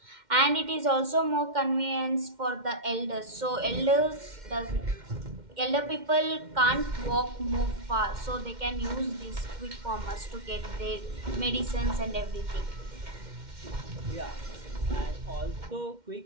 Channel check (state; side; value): late; left; 2.1 ms